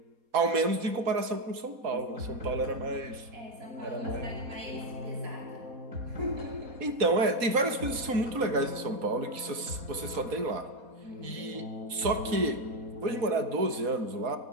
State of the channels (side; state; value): left; late; 4.2 ms